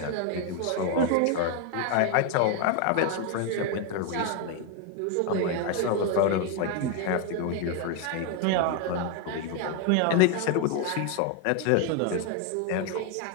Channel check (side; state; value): both; different; correlation 0.01